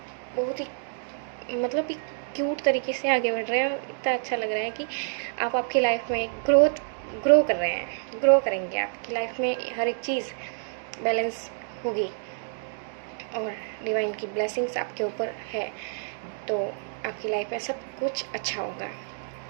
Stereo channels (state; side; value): silent; left; digital silence